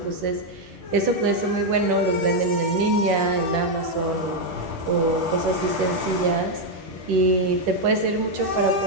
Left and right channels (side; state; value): left; late; 10 ms